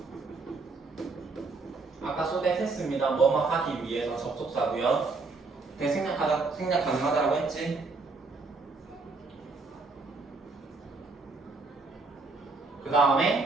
아까 소댓 했습니다. 뭐뭐 하기 위해서 접속사고요. 생략 가능하다라고 했지? 그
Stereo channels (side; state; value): left; quieter; 3.9 dB